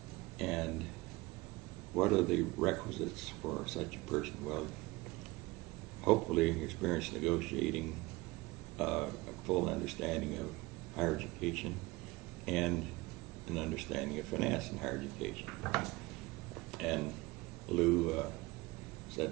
And what are the requisites for such a person? Well, hopefully experience negotiating, a full understanding of higher education, and an understanding of finance in higher education. And Lou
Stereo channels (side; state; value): left; quieter; 22.0 dB